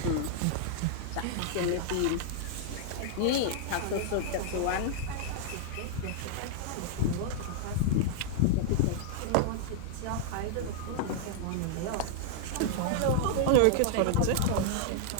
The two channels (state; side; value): different; both; correlation -0.01